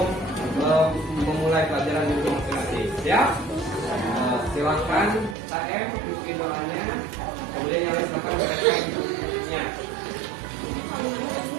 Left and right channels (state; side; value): drops out; left; at 5.4 s